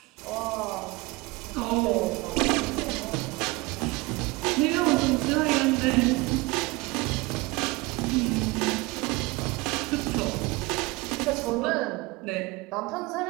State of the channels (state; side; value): quieter; left; 23.1 dB